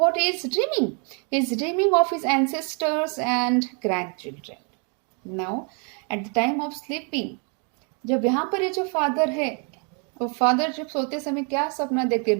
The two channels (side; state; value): left; quieter; 37.8 dB